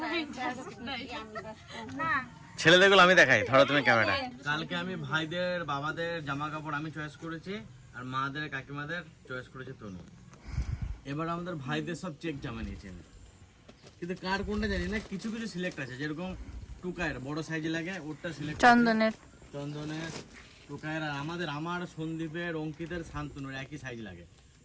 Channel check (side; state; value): both; identical; correlation 1.00